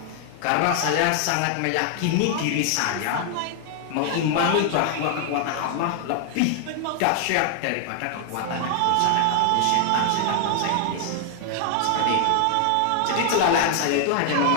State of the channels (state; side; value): different; both; correlation 0.00